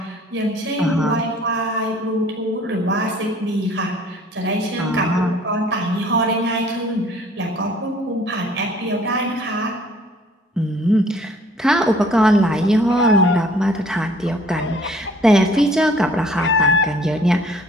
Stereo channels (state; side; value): normal; both; correlation 0.56